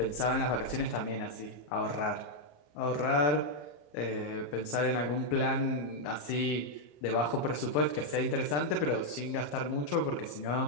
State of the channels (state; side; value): late; right; 34 ms